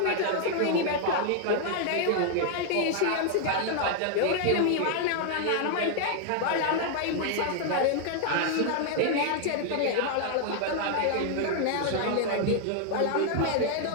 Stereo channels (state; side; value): different; both; correlation 0.00